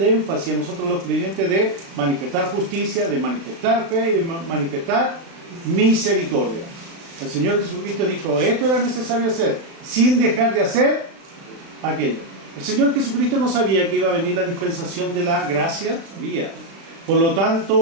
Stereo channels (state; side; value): late; left; 36 ms